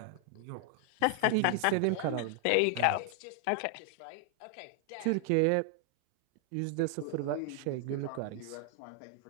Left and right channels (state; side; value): different; both; correlation 0.00